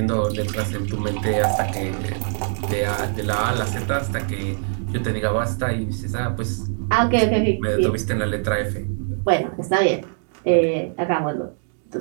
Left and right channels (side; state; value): left; silent; digital silence